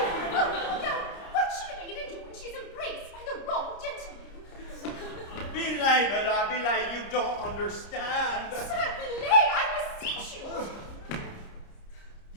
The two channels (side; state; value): right; late; 30 ms